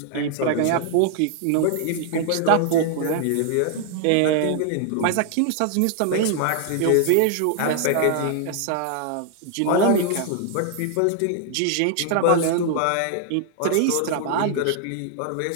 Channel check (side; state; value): both; different; correlation 0.00